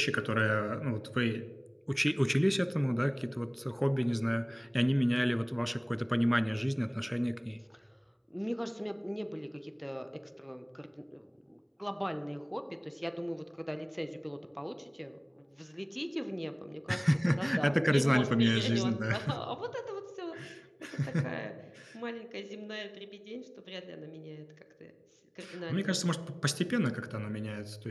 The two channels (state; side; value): identical; both; correlation 1.00